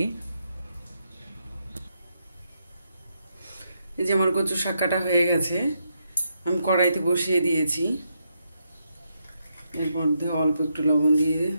এই যে আমার কচু শাক কাটা হয়ে গেছে, আমি কড়াইতে বসিয়ে দিয়েছি। এর মধ্যে অল্প একটু লবণ দিয়ে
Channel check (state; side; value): inverted; both; correlation -0.81